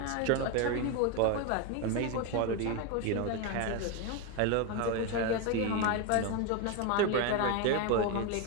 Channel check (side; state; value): both; different; correlation 0.02